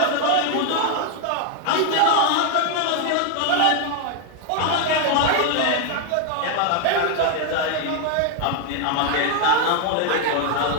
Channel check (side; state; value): both; different; correlation 0.01